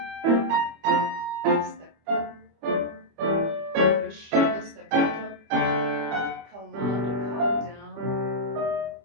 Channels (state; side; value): late; left; 25 ms